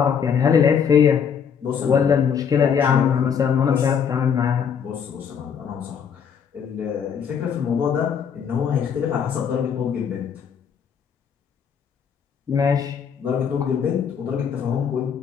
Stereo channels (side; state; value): right; quieter; 7.3 dB